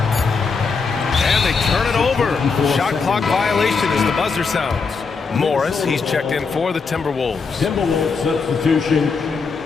And they turn it over. Shot clock violation as the buzzer sounds. Morris, he's checked in for the Timberwolves. Timberwolves substitution,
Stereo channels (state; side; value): quieter; right; 4.9 dB